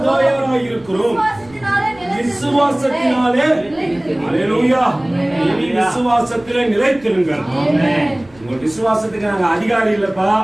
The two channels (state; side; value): noise; right; rumble, 26 dB below the sound